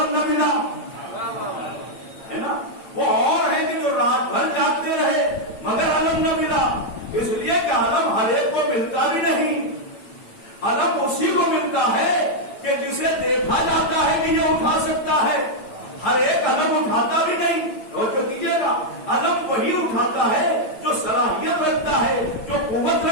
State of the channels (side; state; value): right; late; 8.9 ms